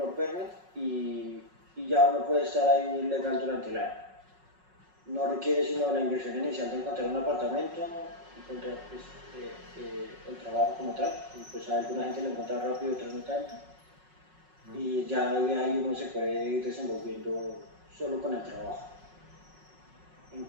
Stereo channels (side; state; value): left; late; 5.4 ms